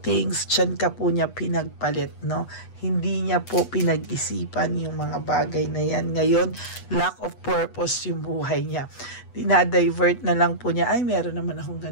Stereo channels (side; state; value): right; late; 8.1 ms